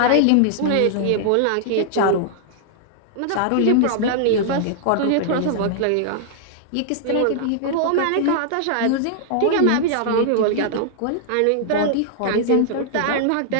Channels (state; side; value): different; both; correlation -0.01